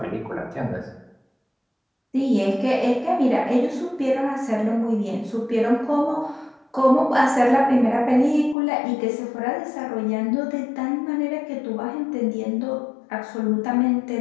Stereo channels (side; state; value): right; drops out; at 8.6 s